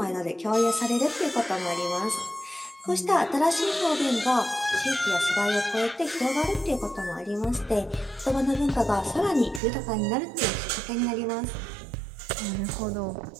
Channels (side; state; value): left; drops out; at 9.6 s